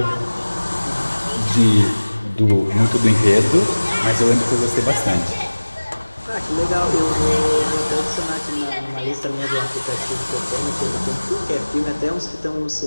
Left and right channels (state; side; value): inverted; both; correlation -1.00